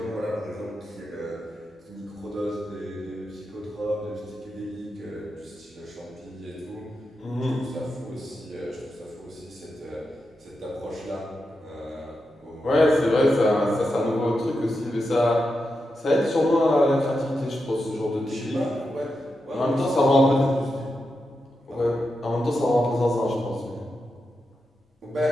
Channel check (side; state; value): both; normal; correlation 0.88